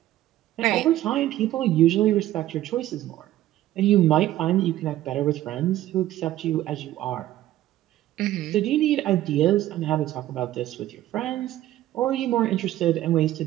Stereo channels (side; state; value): left; quieter; 14.2 dB